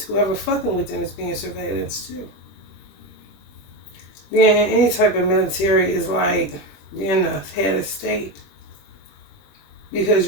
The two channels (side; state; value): right; late; 21 ms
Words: whoever fucking with them is being surveillance too. Being in any type of military is like being a head of state. Because